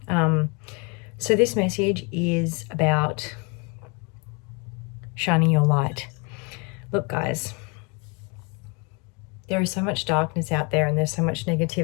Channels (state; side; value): quieter; right; 32.1 dB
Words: So this message is about shining your light. Look, guys, there is so much darkness out there and there's so much